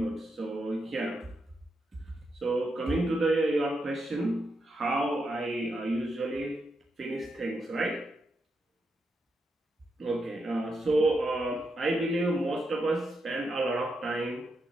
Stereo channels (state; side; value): normal; both; correlation 0.84